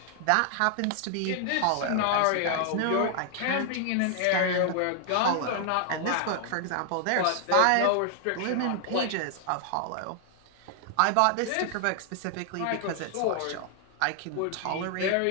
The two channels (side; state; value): both; different; correlation 0.00